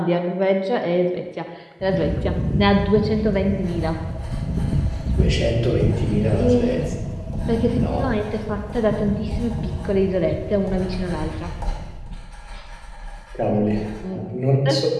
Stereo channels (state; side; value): identical; both; correlation 1.00